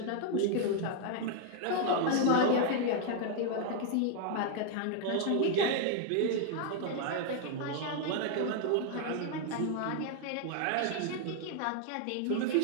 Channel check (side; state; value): both; different; correlation 0.00